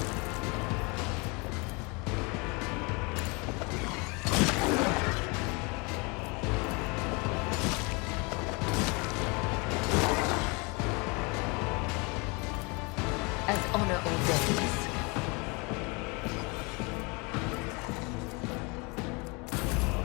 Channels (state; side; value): quieter; right; 29.2 dB